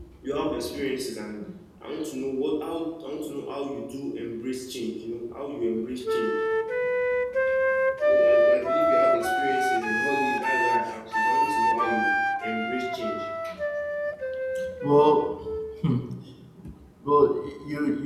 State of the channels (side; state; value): both; identical; correlation 1.00